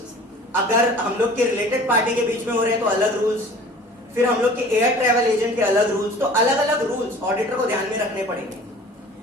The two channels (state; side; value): normal; both; correlation 0.45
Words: अगर हम लोग के related party के बीच में हो रहे हैं तो अलग रूल्स, फिर हम लोग के एयर ट्रैवल एजेंट के अलग रूल्स, तो अलग अलग रूल्स ऑडिटर को ध्यान में रखने पड़ेंगे.